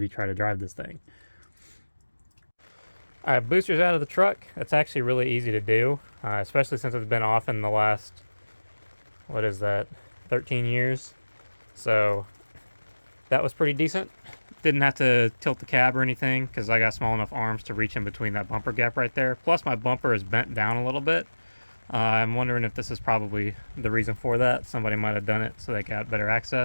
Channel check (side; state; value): both; inverted; correlation -1.00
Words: try to drive this thing. All right, booster's out of the truck. That's actually really easy to do, especially since it's been off in the last, what is that, 13 years. So that was pretty decent. Didn't have to tilt the cab or anything because I got small enough arms to reach in between that bumper gap right there. Plus my bumper is bent down a little bit. I'm wondering if this is probably the reason for that. Somebody might have done it so they got better